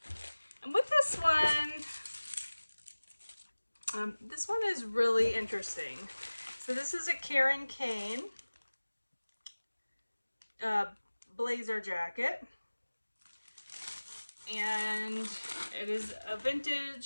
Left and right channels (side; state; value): both; inverted; correlation -1.00